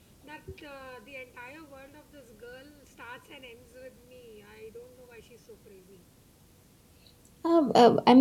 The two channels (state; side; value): identical; both; correlation 1.00